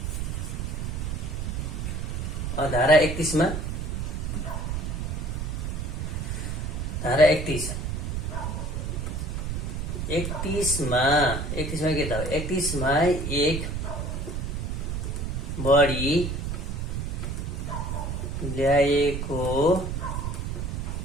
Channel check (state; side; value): noise; right; rumble, 3 dB below the sound